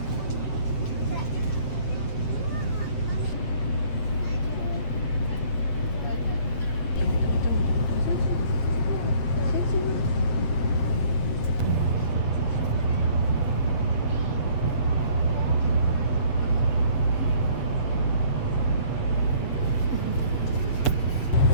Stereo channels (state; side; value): late; right; 7.8 ms